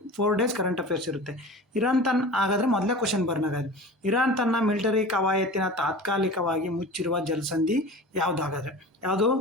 4 ಡೇಸ್ ಕರೆಂಟ್ ಅಫೇರ್ಸ್ ಇರುತ್ತೆ. ಇರಾನ್ ಹಾಗಾದರೆ ಮೊದಲೇ ಕ್ವಶನ್ ಬರ್ನಾಗಾದ್ರೆ, ಇರಾನ್ ತನ್ನ ಮಿಲಿಟರಿ ಕವಾಯತಿನ ತಾತ್ಕಾಲಿಕವಾಗಿ ಮುಚ್ಚಿರುವ ಜಲಸಂಧಿ ಯಾವುದಾಗಾದ್ರೆ? ಯಾವುದು?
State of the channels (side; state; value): both; normal; correlation 0.36